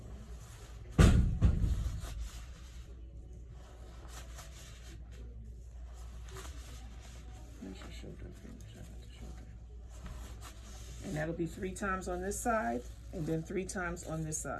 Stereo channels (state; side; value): identical; both; correlation 1.00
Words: And that'll be 3 times on this side, and then 3 times on this